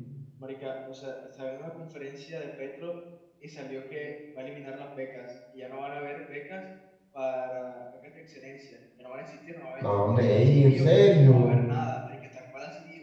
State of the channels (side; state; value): both; identical; correlation 1.00